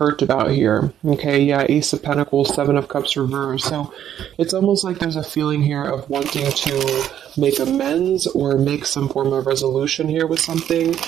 about here. Okay, yeah, Ace of Pentacles, Seven of Cups reversed. So it's almost like there's a feeling here of wanting to make amends or make some form of resolution here with something.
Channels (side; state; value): left; quieter; 10.3 dB